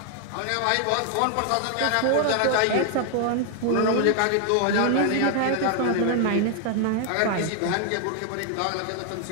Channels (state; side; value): different; both; correlation 0.00